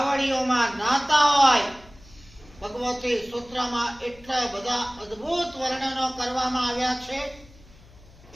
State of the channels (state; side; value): noise; left; hum, 24 dB below the sound